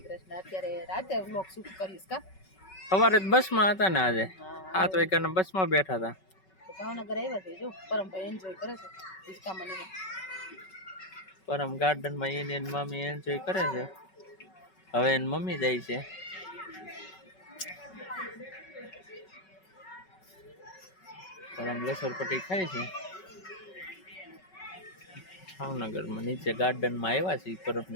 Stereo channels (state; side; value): late; right; 5.3 ms